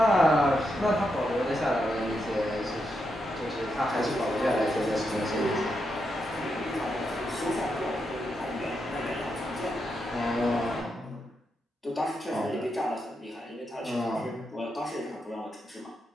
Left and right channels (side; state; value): both; normal; correlation 0.84